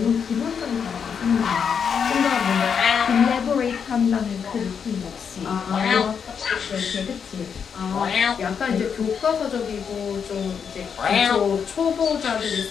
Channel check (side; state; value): right; quieter; 6.9 dB